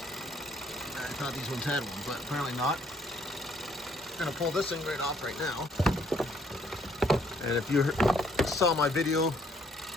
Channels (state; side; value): normal; both; correlation 0.65